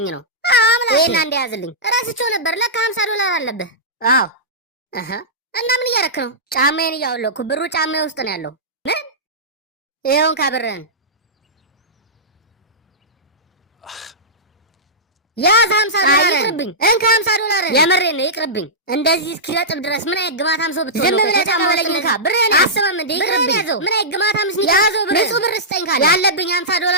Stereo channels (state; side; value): normal; both; correlation -0.14